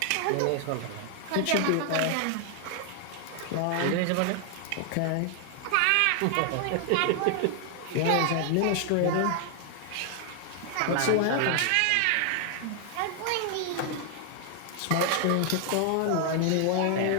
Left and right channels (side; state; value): both; different; correlation 0.00